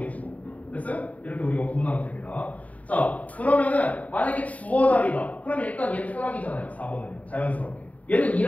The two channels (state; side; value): late; right; 0.070 ms